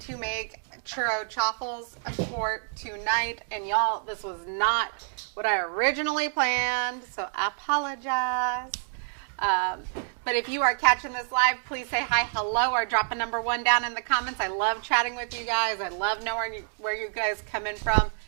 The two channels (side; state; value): left; silent; digital silence